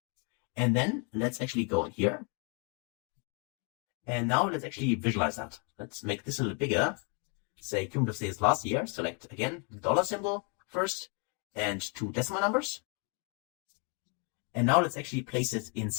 and then let's actually go in here. And now let's actually visualize that. Let's make this a little bigger. Say cumulative sales last year. Select again the dollar symbol first and 2 decimal numbers. And now let's actually place it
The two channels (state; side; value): quieter; right; 37.2 dB